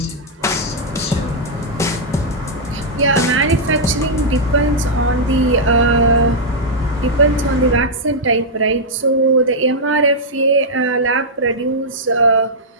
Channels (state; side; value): normal; both; correlation -0.07